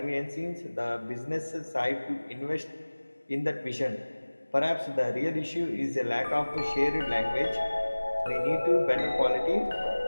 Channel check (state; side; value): inverted; both; correlation -1.00